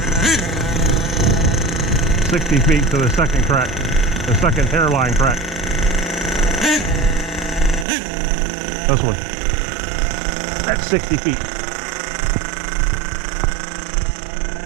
60 feet to the second crack, the second hairline crack. This one. That's 60 feet.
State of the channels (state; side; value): drops out; left; at 7.9 s